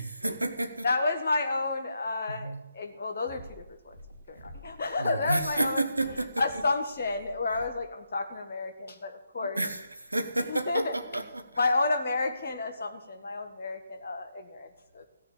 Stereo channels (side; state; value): both; inverted; correlation -0.83